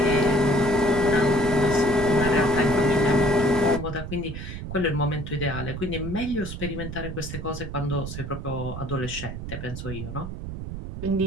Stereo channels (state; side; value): noise; right; rumble, 7 dB below the sound